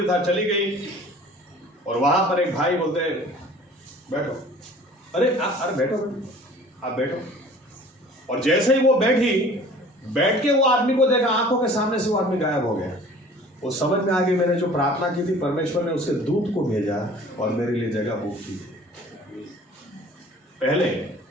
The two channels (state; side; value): normal; both; correlation 0.48